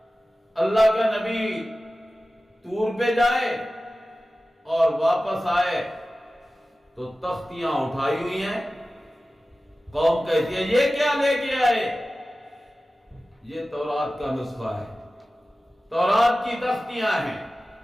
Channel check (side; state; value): both; normal; correlation 0.96